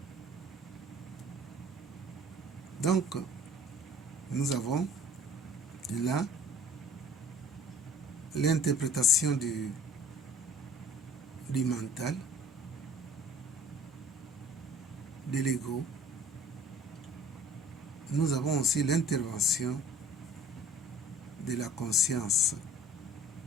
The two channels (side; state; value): both; normal; correlation 0.50